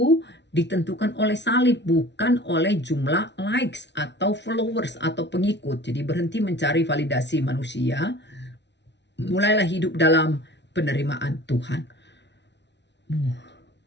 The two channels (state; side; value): late; right; 0.51 ms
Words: ditentukan oleh salib, bukan oleh jumlah likes atau followers atau pengikut. Jadi berhenti mencari validasi manusia. Mulailah hidup dalam penerimaan Tuhan.